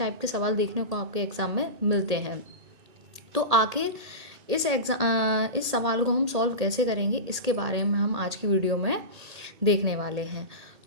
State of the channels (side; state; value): left; late; 1.8 ms